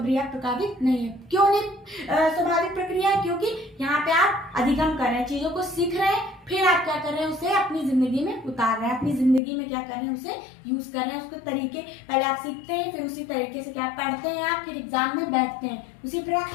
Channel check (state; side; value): drops out; right; at 9.4 s